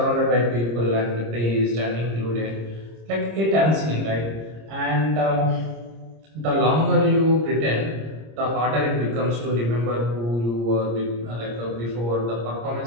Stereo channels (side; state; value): left; late; 26 ms